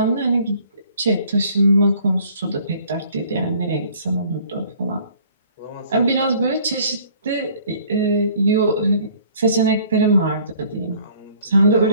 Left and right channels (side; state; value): both; inverted; correlation -0.56